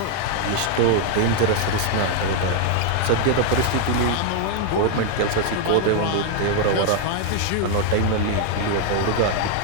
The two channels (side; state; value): both; different; correlation 0.00